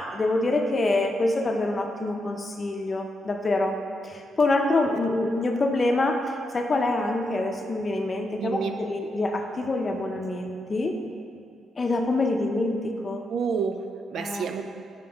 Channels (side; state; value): both; normal; correlation 0.83